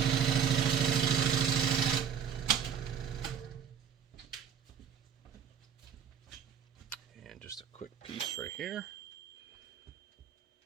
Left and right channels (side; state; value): left; quieter; 7.8 dB